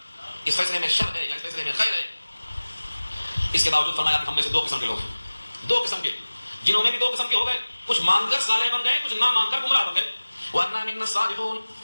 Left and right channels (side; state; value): both; inverted; correlation -1.00